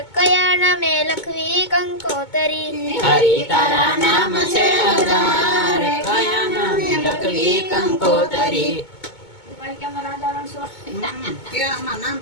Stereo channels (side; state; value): right; late; 2.2 ms